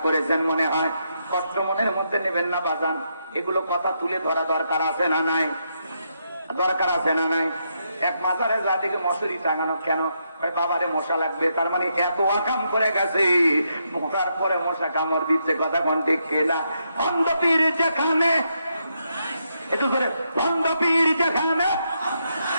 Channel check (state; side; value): inverted; both; correlation -0.80